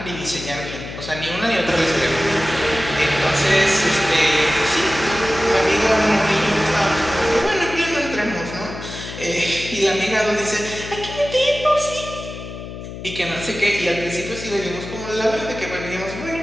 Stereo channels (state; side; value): noise; left; hum, 10 dB below the sound